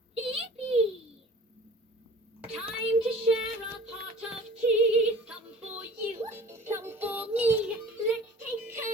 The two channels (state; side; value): normal; both; correlation 0.44